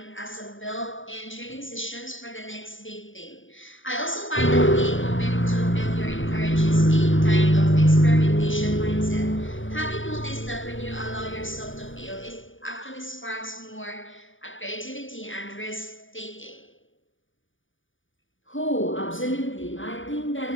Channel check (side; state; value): right; late; 0.57 ms